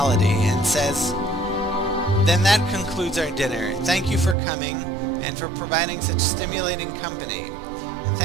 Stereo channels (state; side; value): drops out; left; at 4.4 s